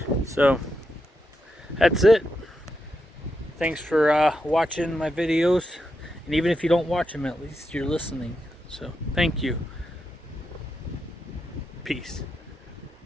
So that's it. Thanks for watching my videos, and even if you don't watch them, at least you're listening. So thank you. Peace.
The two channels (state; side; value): normal; both; correlation 0.85